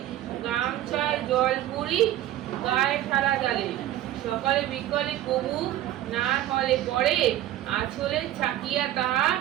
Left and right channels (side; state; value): left; quieter; 13.4 dB